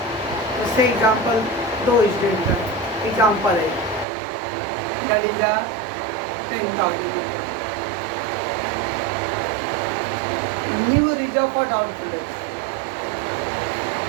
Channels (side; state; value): left; drops out; at 4.0 s